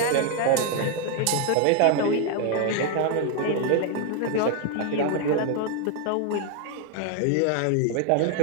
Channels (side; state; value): both; different; correlation 0.01